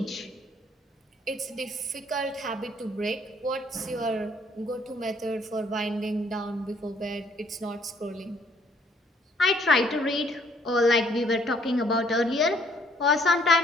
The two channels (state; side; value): normal; both; correlation 0.63